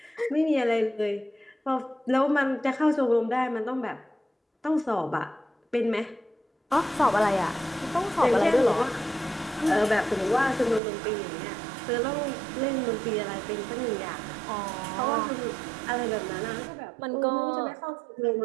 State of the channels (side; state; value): left; drops out; at 10.8 s